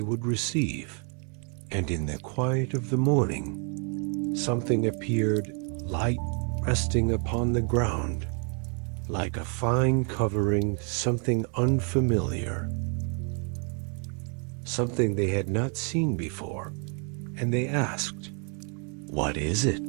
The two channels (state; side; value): quieter; left; 39.1 dB